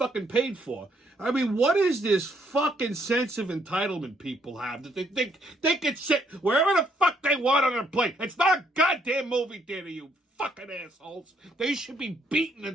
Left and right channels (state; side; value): normal; both; correlation 0.70